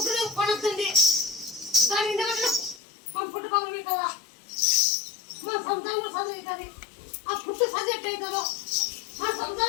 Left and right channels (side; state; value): right; drops out; at 2.8 s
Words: కొనొద్దండి దాని ఎందుకంటే మా పుట్ట పగలవి కదా మా సంతానం కూడా చదువుతుంది ఆ పుట్టు చదివేట్ అవుతుందో మా